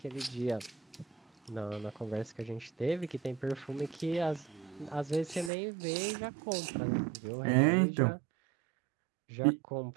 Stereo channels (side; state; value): left; drops out; at 5.5 s